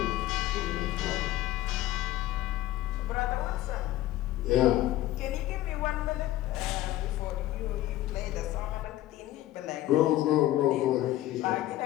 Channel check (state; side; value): quieter; right; 15.0 dB